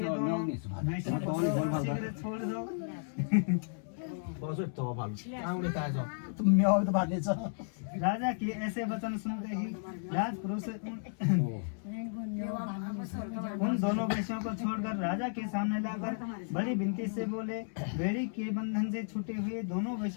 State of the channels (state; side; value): silent; right; 55 dB below the other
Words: दोनों वैश्यों को शीघ्र छोड़ दो। राजा के ऐसे वचन सुनते ही राजपुरुष उन दोनों वैश्यों को छोड़कर राजा के सामने लाकर बड़ी विनती से बोले, बेड़ी के बंधन से छूटे हुए दोनों